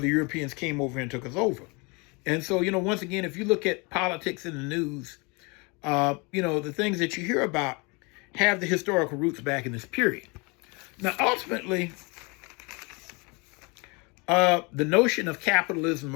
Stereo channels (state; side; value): quieter; right; 29.0 dB